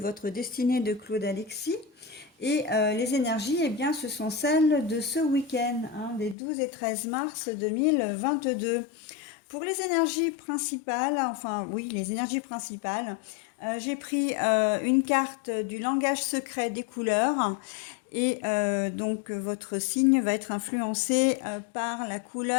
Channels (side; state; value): right; drops out; at 6.4 s